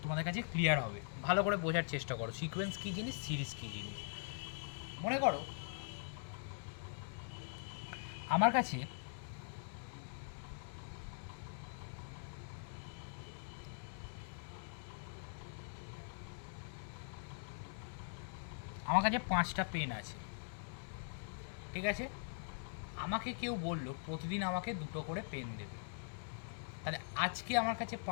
তোমাদের কাছে ক্লিয়ার হবে। ভালো করে বোঝার চেষ্টা করো সিকোয়েন্স কী জিনিস, সিরিজ কী জিনিস। মনে করো আমার কাছে আমার কাছে 5টা পেন আছে, ঠিক আছে। আমাকে কেউ বললো প্রতিদিন আমাকে 2টো করে পেন দেবে। তাহলে আজকে আমার কাছে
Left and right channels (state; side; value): silent; right; digital silence